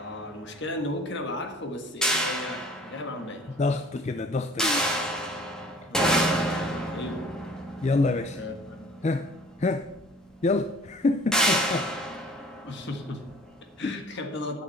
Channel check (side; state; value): both; normal; correlation 0.50